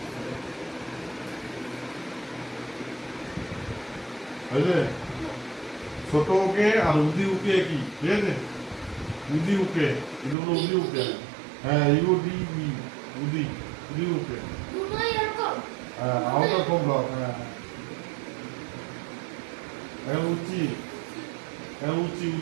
বুঝলে? ছোট উকে আর উদি উকে কি, ঠিক আছে? উদি উকে, এটা হলো উদি উকে, হ্যাঁ ইউডি বি, উদি, উদি উকে, হ্যাঁ আউটার কম ব্লক, হ্যাঁ এখন উচি, এখন উচি,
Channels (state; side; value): drops out; left; at 10.4 s